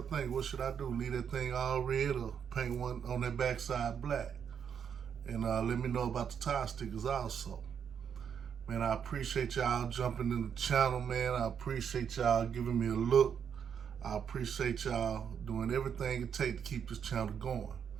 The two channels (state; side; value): quieter; left; 7.6 dB